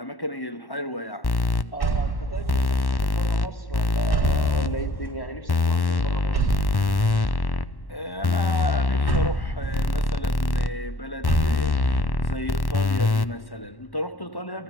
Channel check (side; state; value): right; late; 1.1 ms